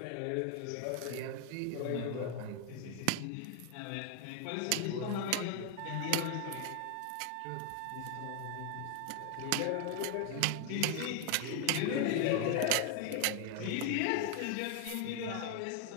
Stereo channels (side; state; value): both; different; correlation 0.00